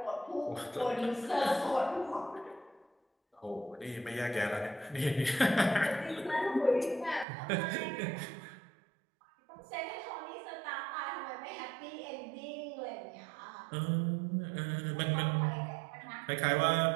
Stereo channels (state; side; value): drops out; left; at 7.2 s